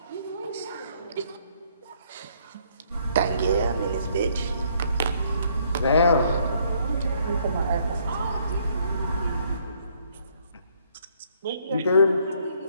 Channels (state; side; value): inverted; both; correlation -0.67